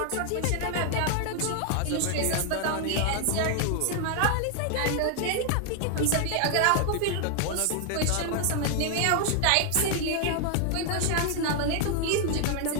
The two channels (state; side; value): different; both; correlation 0.00